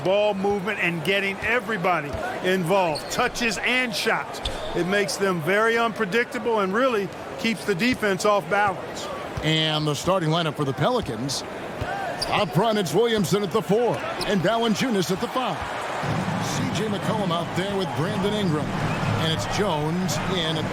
ball movement, and getting everybody involved, touches and shots. It makes them very unpredictable and really keeps the defense off balance. And the starting lineup for the Pelicans. Up front, it's Williamson at the 4 and Valanciunas at the 5. C.J. McCollum out there with Brandon Ingram. And it's Jones in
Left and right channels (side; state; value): both; identical; correlation 1.00